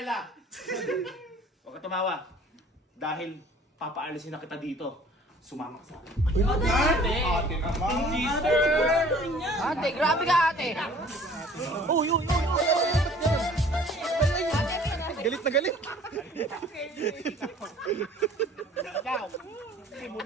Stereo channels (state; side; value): normal; both; correlation 0.51